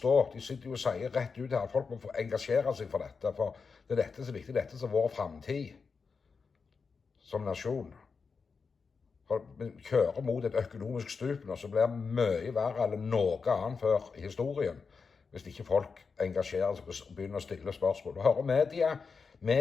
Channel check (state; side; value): quieter; right; 5.1 dB